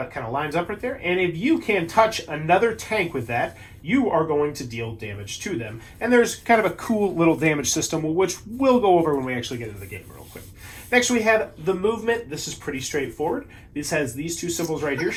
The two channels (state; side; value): identical; both; correlation 1.00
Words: it kind of lines up right there? And if you can touch another tank with that, you are going to deal damage to them. And there's kind of a cool little damage system, which we'll go over when we actually get into the game real quick. Next, we have the movement. This is pretty straightforward. This has these 2 symbols right here,